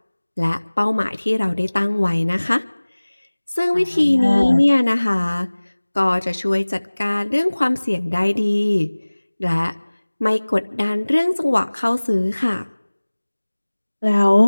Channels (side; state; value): both; inverted; correlation -1.00